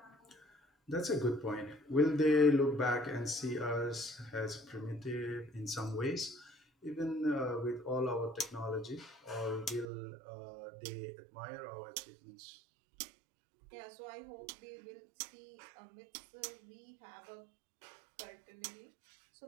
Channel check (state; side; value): drops out; left; at 9.9 s